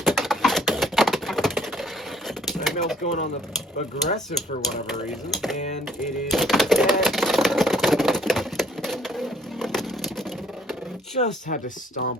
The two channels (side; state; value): both; normal; correlation 0.62